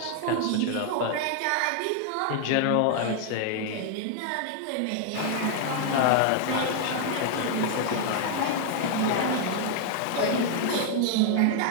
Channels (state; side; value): different; both; correlation 0.00